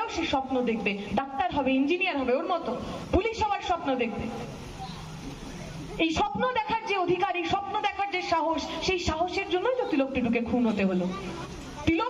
সে স্বপ্ন দেখবে, ডাক্তার হবে, ইঞ্জিনিয়ার হবে, ওর মতো পুলিশ হওয়ার স্বপ্ন দেখবে। এই স্বপ্ন দেখার যে অধিকার, এই স্বপ্ন দেখার যে সাহস, সেই সাহসের জন্যই তো তিলক টুডুকে খুন হতে হলো।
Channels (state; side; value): identical; both; correlation 1.00